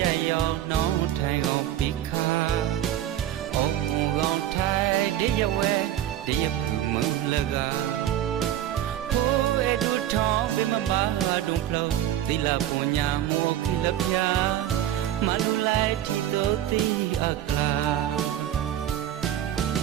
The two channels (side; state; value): left; quieter; 11.9 dB